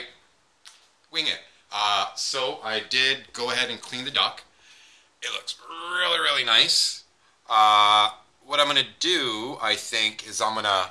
Wing it. So I did go ahead and clean the duck. It looks really, really nice. What I'm going to do, I think, is I'm going to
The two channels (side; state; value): both; identical; correlation 1.00